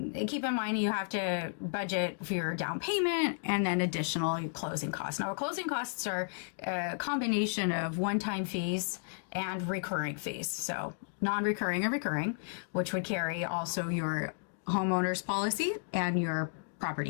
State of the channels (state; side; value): silent; right; digital silence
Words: keep in mind you have to budget for your down payment and then additional closing costs. Now, closing costs are a combination of one-time fees and recurring fees. So non-recurring and recurring, which would carry also your homeowner's policy and your